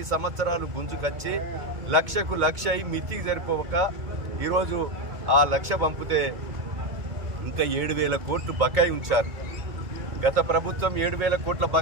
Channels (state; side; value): late; left; 2.0 ms